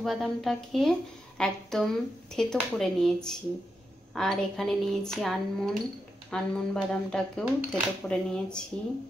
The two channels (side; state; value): both; normal; correlation 0.86